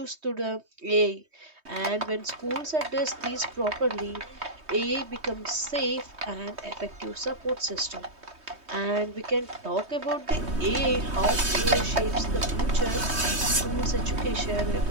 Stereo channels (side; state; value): left; late; 3.2 ms